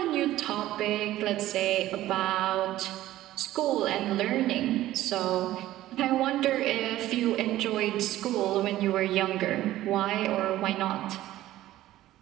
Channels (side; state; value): left; quieter; 14.8 dB